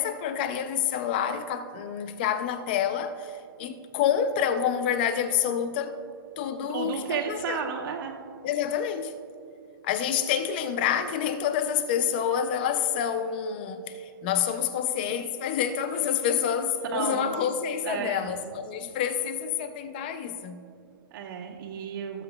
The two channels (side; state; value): right; quieter; 6.7 dB